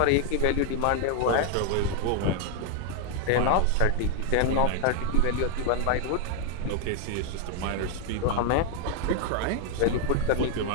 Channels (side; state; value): both; different; correlation 0.00